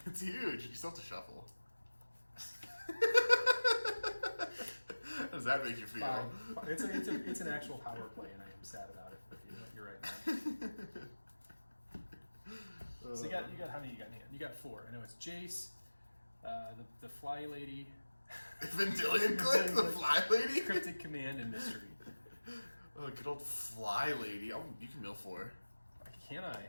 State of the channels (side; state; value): both; inverted; correlation -1.00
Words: It's huge. You still have to shuffle. How does that make you feel? Fine. It's an actual power play, and I am sad about it. But you're right, man. So you got how many you got in hand? You got 4. I know it's Jace, the Fly Lady, Vendilion Click, the Fly Lady? Cryptic Command, and Mystery. Oh, good old Fly Lady. Oh, you can mill 4. Can I?